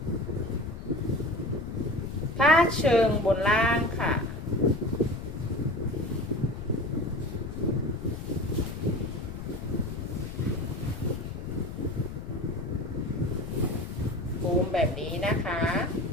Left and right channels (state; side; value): noise; left; rumble, 8 dB below the sound